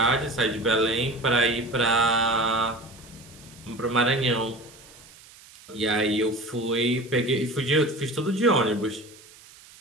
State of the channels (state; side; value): noise; right; hiss, 22 dB below the sound